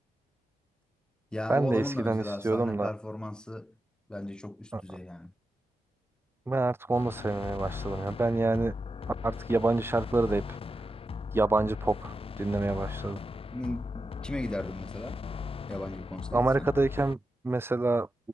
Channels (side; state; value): both; normal; correlation 0.90